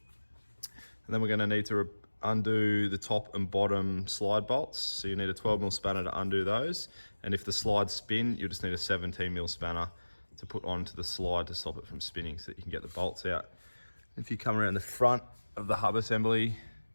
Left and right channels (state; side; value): inverted; both; correlation -1.00